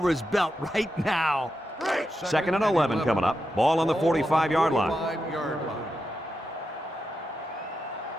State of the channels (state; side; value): normal; both; correlation 0.87